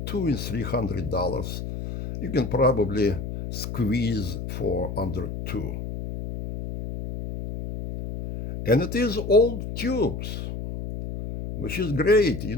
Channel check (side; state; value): left; noise; hum, 6 dB below the sound